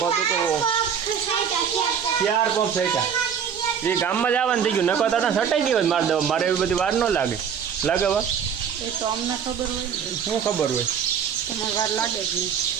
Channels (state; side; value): quieter; left; 7.6 dB